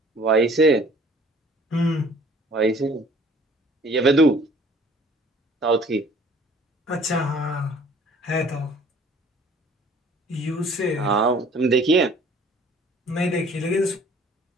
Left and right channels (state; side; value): normal; both; correlation 0.53